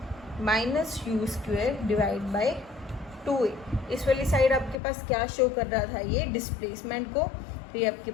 minus U square divide by 2A। इस वाली साइड आपके पास क्या शो कर रहा था, ये डिस्प्लेसमेंट को, तो ये आपके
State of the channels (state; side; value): drops out; right; at 4.8 s